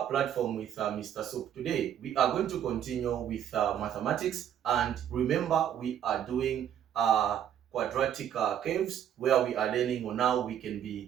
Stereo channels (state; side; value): quieter; left; 9.8 dB